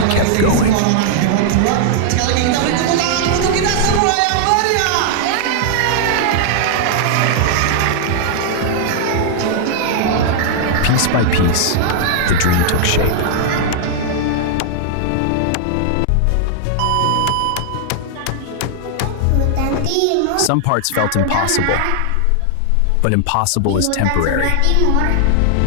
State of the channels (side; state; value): both; different; correlation -0.01